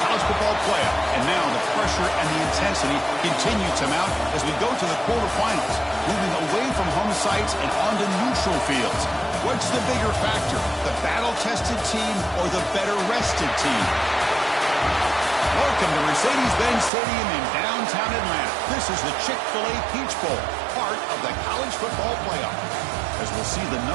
college football playoff, and now the pressure and the intensity continue to mount as we go to the quarterfinals, moving away from home sites and onto neutral fields. What's the bigger factor, the battle-tested team or the better-rested team? Welcome to Mercedes-Benz Stadium in downtown Atlanta. This is the Chick-fil-A Peach Bowl, part of the college football playoff. As we'll see the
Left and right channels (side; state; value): left; drops out; at 16.9 s